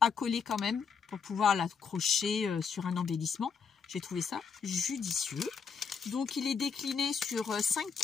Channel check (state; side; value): quieter; right; 6.0 dB